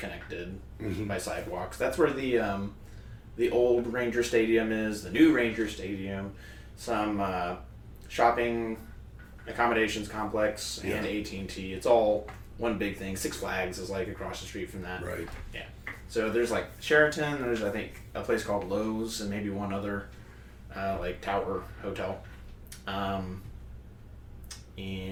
by sidewalks. That's where the old Ranger Stadium is, the new Ranger Stadium, some shopping accommodations complex, and AT&T. It's all one big thing. Six Flags is like across the street from that. Right. Yeah. So there's like Sheraton, there's I think a place called Lowe's, and maybe one other like tower hotel.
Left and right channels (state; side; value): identical; both; correlation 1.00